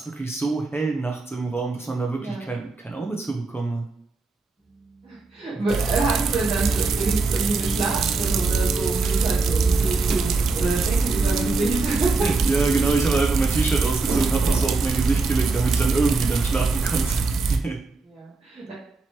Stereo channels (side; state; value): left; quieter; 3.8 dB